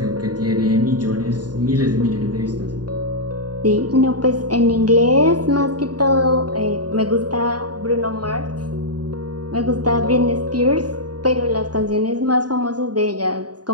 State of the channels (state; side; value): late; left; 0.69 ms